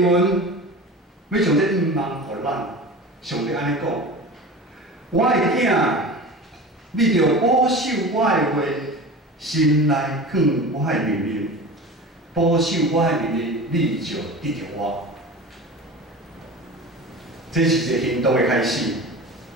文，要将这愿望互咱。上帝安尼讲：我的囝，你着保守我的话，心内放我的命令，保守我的命令，你就得着我。这是一个行动的开始。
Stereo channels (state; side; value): normal; both; correlation 0.34